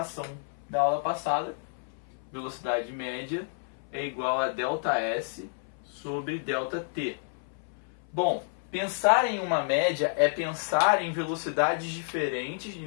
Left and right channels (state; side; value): silent; right; 58 dB below the other